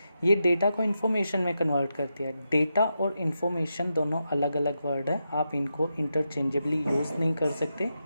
ये डेटा को इन्फॉर्मेशन में कन्वर्ट करती है। डेटा और इन्फॉर्मेशन दोनों अलग अलग वर्ड है, आप इनको इंटरचेंजेबली यूज़ नहीं कर सकते।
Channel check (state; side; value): inverted; both; correlation -0.86